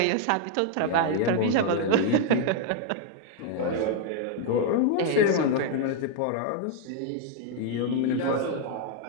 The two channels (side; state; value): both; different; correlation 0.00